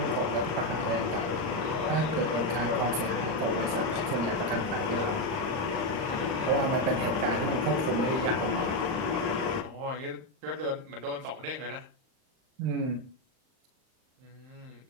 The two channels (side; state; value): left; late; 39 ms